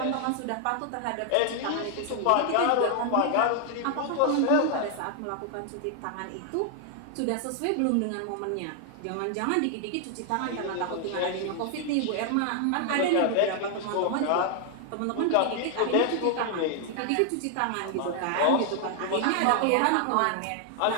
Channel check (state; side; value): different; both; correlation 0.00